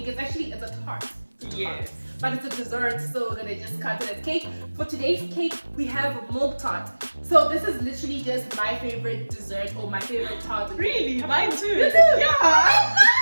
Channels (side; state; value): both; inverted; correlation -1.00